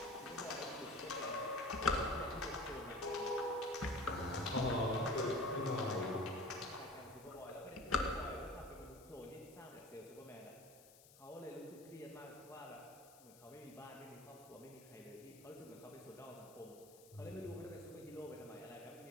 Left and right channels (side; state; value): left; noise; hiss, 21 dB below the sound